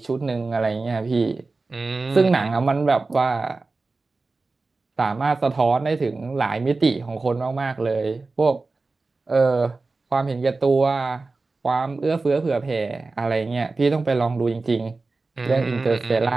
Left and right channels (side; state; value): left; quieter; 3.7 dB